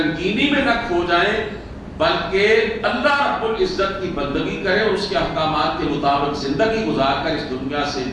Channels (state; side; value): identical; both; correlation 1.00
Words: میں نہ کھو جائیں، بلکہ اللہ رب العزت کی بندگی کریں اور اس کے احکامات کے مطابق زندگی گزار کر اس دنیا سے